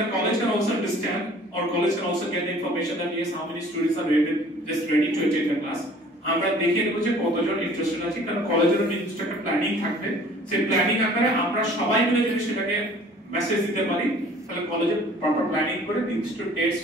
the college can also understand, or college can also get the information that yes, how many students are ready to attend the class. আমরা দেখে নেব যে কতজন ইন্টারেস্টেড আছে, কারণ কলেজের নির্দিষ্ট একটা প্ল্যানিং থাকবে। সেই প্ল্যানিং আকারে আমরা সবাই মিলে যদি সেটাকে মেসেজ দিতে পারি, তাহলে কলেজে প্রপার প্ল্যানিং করে নির্দিষ্ট ডেটস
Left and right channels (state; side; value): normal; both; correlation 0.51